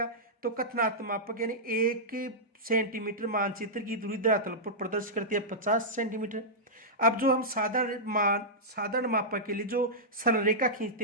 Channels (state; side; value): normal; both; correlation -0.11